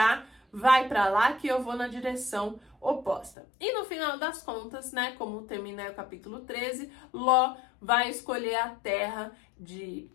vai para lá que eu vou na direção oposta. E no final das contas, né, como termina o capítulo 13, Ló vai escolher a terra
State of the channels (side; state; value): right; drops out; at 3.4 s